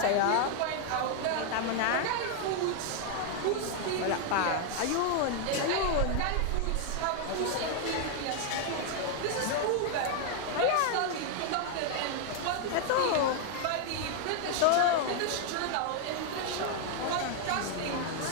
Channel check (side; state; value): both; different; correlation 0.00